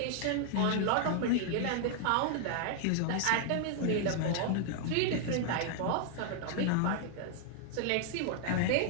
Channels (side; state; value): both; different; correlation 0.00